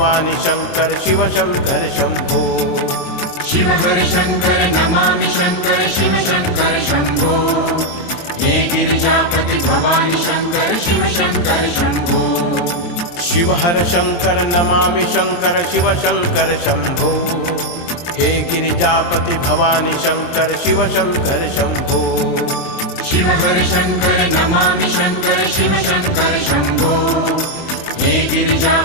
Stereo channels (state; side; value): late; right; 23 ms